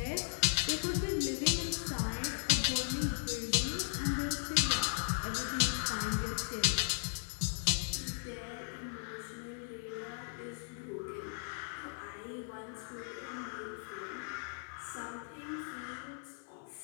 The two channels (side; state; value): right; silent; 53 dB below the other